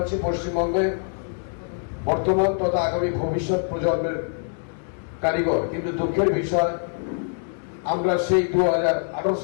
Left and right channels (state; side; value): silent; right; digital silence